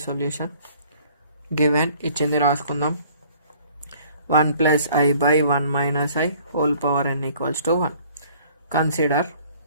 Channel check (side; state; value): both; inverted; correlation -0.56